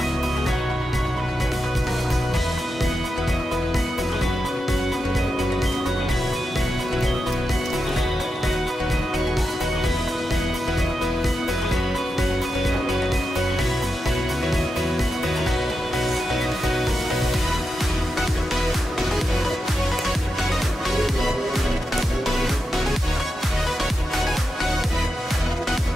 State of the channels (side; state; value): both; normal; correlation 0.88